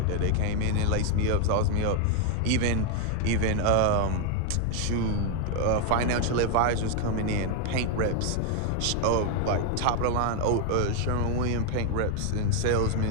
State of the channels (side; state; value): both; different; correlation 0.00